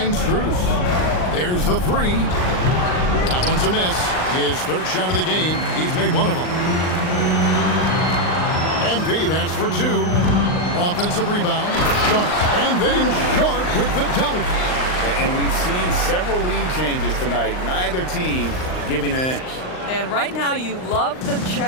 Strus. There's the 3. That one's a miss. His third shot of the game. He's made one of them. MP, that's for 2. Offensive rebound. Sharp. And then Sharp with the dunk. And we've seen several lead changes tonight. Neither team giving an inch. And right now you love the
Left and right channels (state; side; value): late; right; 39 ms